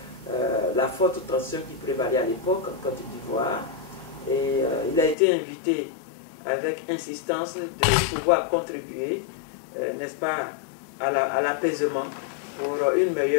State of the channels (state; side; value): drops out; right; at 5.2 s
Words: la forte tension qui prévalait à l'époque en Côte d'Ivoire. Et il a été invité avec insistance de pouvoir contribuer, n'est-ce pas, à l'apaisement pour une